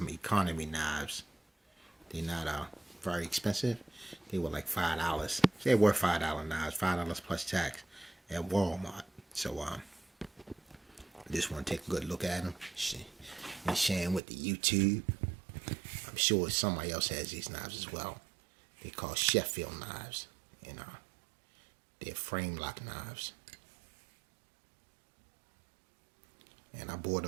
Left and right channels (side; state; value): left; drops out; at 14.2 s